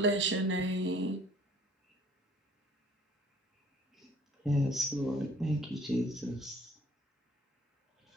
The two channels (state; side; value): normal; both; correlation 0.54